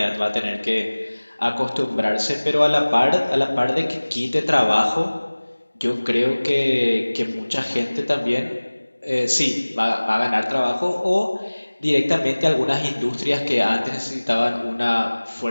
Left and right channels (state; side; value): inverted; both; correlation -1.00